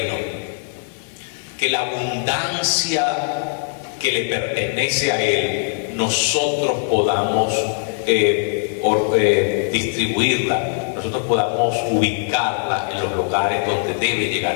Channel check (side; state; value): right; silent; 65 dB below the other